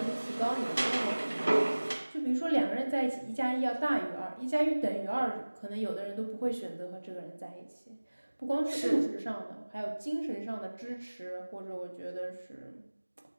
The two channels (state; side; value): inverted; both; correlation -1.00